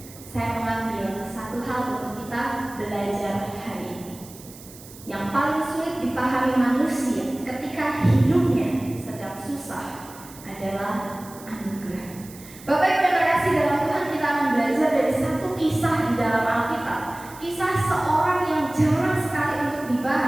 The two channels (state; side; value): noise; right; hiss, 19 dB below the sound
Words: saya mengambil satu hal untuk kita belajar hari ini. Yang paling sulit dipahami manusia ketika hidupnya sedang susah adalah anugerah. Bapak Ibu yang terkasih dalam Tuhan, kita akan belajar dari satu kisah di dalam Alkitab. Kisah seorang yang jarang sekali untuk